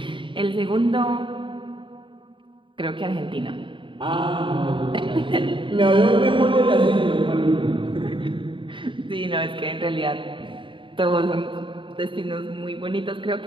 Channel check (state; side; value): late; left; 0.24 ms